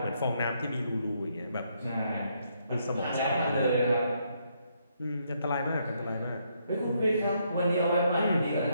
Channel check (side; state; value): both; inverted; correlation -0.74